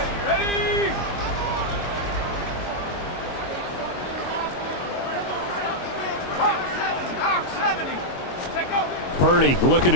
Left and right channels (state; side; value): late; right; 22 ms